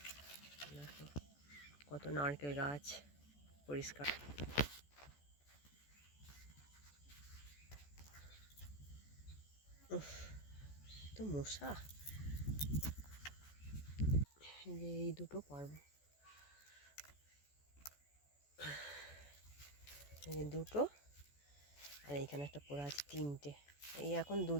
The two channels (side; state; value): right; late; 14 ms